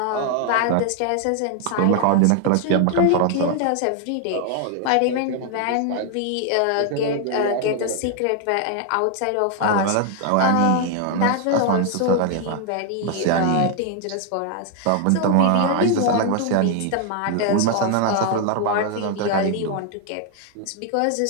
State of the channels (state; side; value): different; both; correlation 0.00